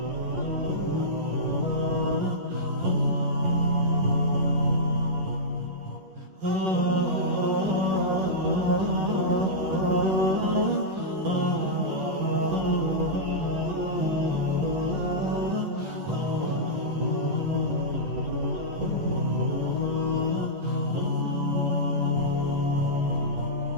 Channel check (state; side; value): late; left; 11 ms